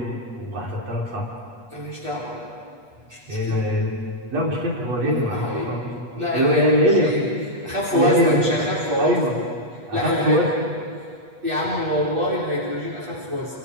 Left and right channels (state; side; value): late; left; 8.3 ms